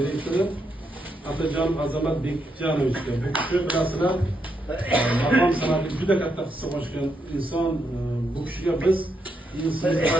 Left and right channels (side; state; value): both; normal; correlation 0.80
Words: Atajonov Azamat Bekjanovichga. Bu kishi bilasizlar, maqom san'atga juda katta hissa qo'shgan inson. Bu kishiga biz inson